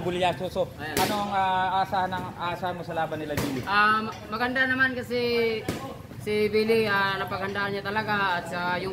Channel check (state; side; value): identical; both; correlation 1.00